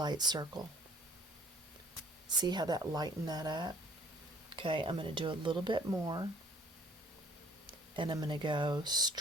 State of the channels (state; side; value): normal; both; correlation 0.56